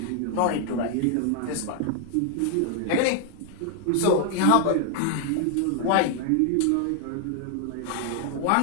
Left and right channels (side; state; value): both; different; correlation 0.00